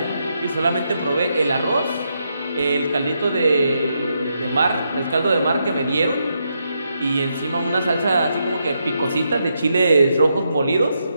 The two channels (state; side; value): inverted; both; correlation -0.81